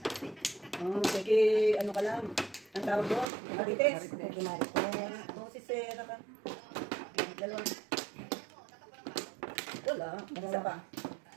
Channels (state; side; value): drops out; left; at 3.2 s